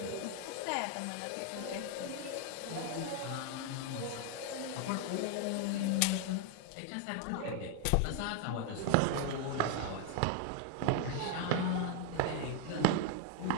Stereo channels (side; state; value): both; different; correlation 0.01